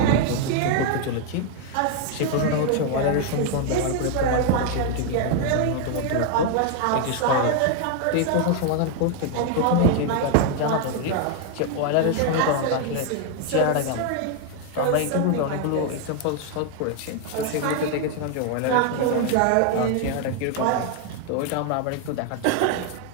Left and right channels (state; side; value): different; both; correlation 0.00